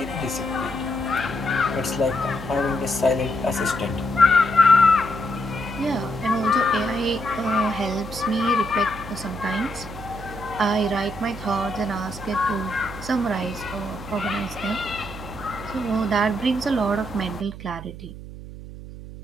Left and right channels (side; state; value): right; noise; hum, 13 dB below the sound